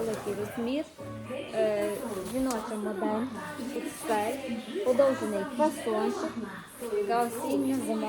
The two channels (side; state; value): both; identical; correlation 1.00